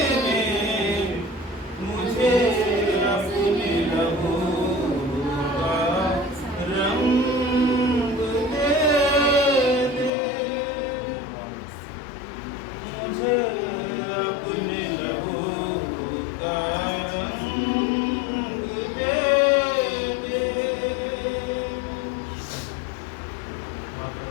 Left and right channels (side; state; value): right; drops out; at 10.1 s